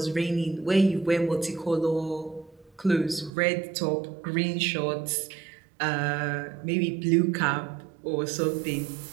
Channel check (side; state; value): left; drops out; at 3.3 s